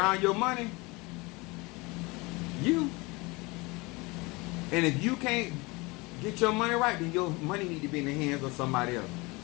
your money, you. And if you can't get your money right, then your money need to be in the hands of somebody else.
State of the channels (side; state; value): right; quieter; 24.9 dB